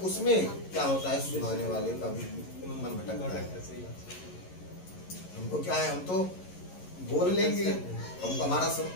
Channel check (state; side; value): late; right; 11 ms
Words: उसमें क्या होता है, सुनाने वाले का भी मन भटकता है। हमको क्या है, हम तो बोल लेंगे, हमको हमारा